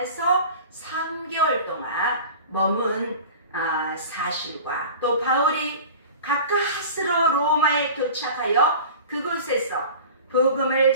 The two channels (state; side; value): inverted; both; correlation -0.37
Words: 3개월 동안 머문 사실과 또 바울이 가까스로 로마에 도착하여 그곳에서 복음을